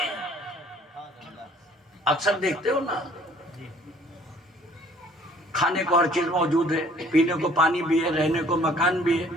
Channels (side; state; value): both; normal; correlation 0.55